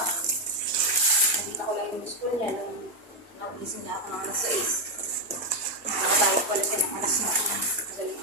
Nakita ko lang yung school niya nung nagising na ako ng alas 6. Tumatawag pala siya ng alas 9. Madaling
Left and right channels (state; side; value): normal; both; correlation 0.05